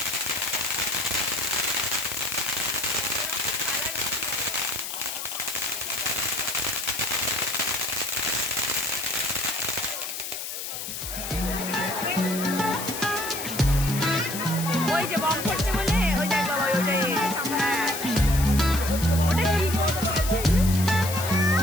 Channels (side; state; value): left; noise; hiss, 6 dB below the sound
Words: ওই যে বম করছে বলে, ওই দেখ বাবা ওইটাই। হ্যাঁ ওটা কি করছে?